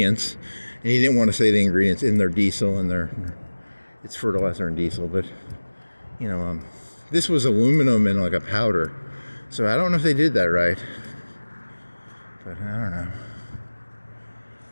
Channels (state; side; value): inverted; both; correlation -1.00